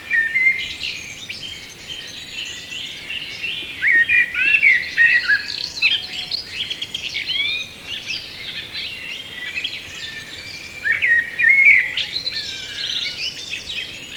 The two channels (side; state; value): both; identical; correlation 1.00